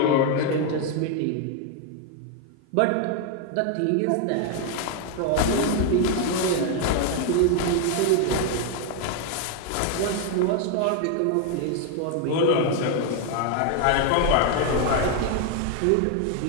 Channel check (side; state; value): both; different; correlation 0.01